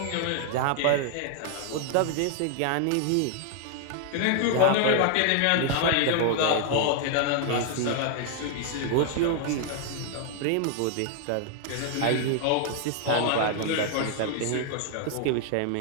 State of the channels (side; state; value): both; different; correlation 0.00